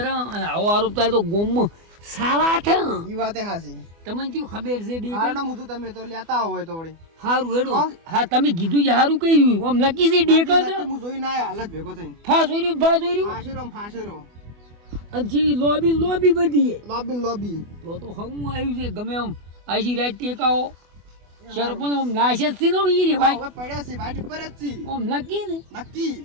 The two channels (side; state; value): left; late; 24 ms